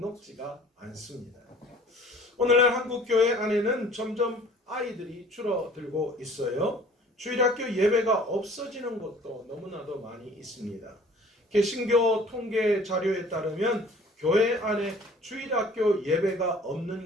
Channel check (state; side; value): normal; both; correlation 0.50